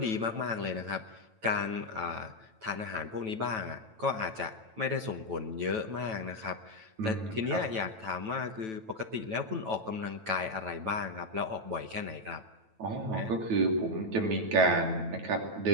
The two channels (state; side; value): late; left; 9.1 ms